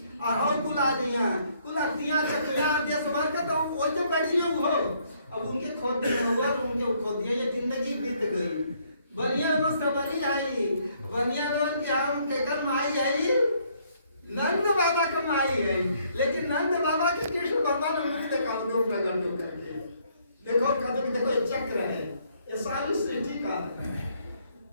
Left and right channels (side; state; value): both; inverted; correlation -0.68